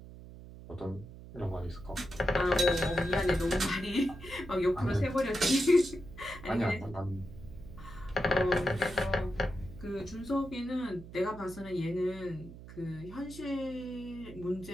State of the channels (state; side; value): noise; right; hum, 15 dB below the sound